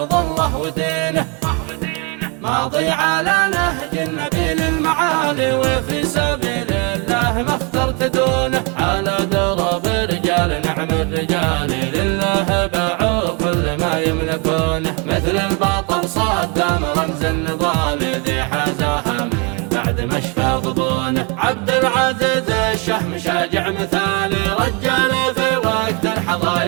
الله ودينه، ماضي على نهج النبي للمعالي، وفي سبيل الله ما اخترت دونه، على درب رجال نعم الرجال لله باعوا كل ما يملكونه، مثل البطل صدام رمز النضال ذي حازاها من بعد ما شفى ضبونه، عبد العزيز الشهم شاجع مثالي، رجال في وقت الحظا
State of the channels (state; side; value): quieter; left; 32.8 dB